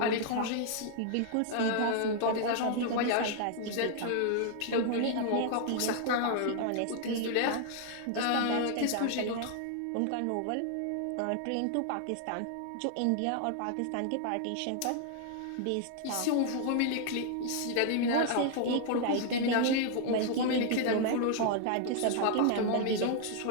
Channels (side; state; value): both; different; correlation 0.00